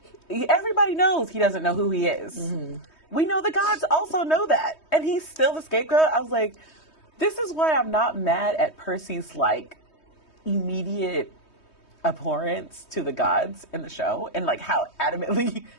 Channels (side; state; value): right; late; 3.2 ms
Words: everybody knows he doesn't know who he is. Mm-hmm. We know the gods also know that, and he's still the scapegoat. I was like, this is why I'm not mad at Percy's, like, immediate abhorrence to the gods in the show, and, like, how adamantly,